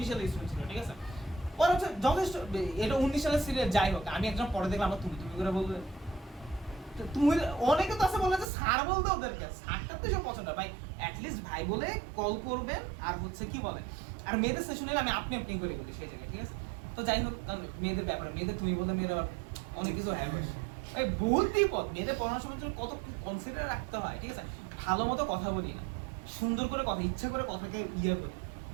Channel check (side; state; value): left; drops out; at 8.5 s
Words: সালে স্টুডেন্ট ছিল, ঠিক আছে? ও পরে হচ্ছে যথেষ্ট, এটা 19 সালের সিরিয়াল যাই হোক, আমি একজন পরে দেখলাম আমরা তুমি তুমি করে বলবে, তো তুমি অনেকে তো আছে বলে যে স্যার বলতে ওদেরকে, স্যারটা তো সব পছন্দ ভাই, অ্যাটলিস্ট ভাই বলে কল করবেন। আর হচ্ছে কি বলে, আর মেয়েদের সেশন হলে আমি আপনি আপনি করে বলি সেই জায়গায়, ঠিক আছে। তো যাই হোক, কারণ মেয়েদের ব্যাপারে, মেয়েদের তুমি বলতে মেয়েরা আবার অনেক কিছু হ্যাঁ বসে এই বহুত বিপদ। মেয়েদের পড়ানোর সময় জন্য কত কনসিডার রাখতে হয়, ঠিক আছে। ভালো মতো কথা বলি না, সুন্দর করে কথা, ইচ্ছা করে কথাকে ইয়ে করি,